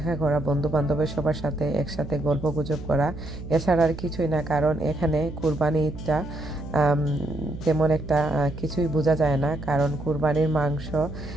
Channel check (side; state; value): right; noise; hum, 11 dB below the sound